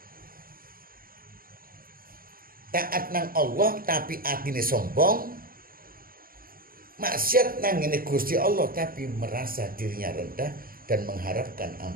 Taat nang Allah tapi atine sombong, maksiat nang ngene Gusti Allah tapi merasa dirinya rendah dan mengharapkan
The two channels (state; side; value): late; left; 0.42 ms